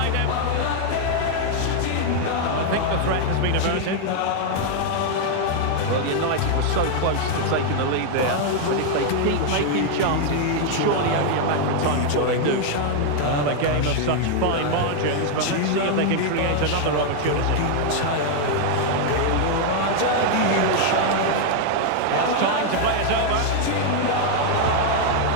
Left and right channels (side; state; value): both; different; correlation 0.00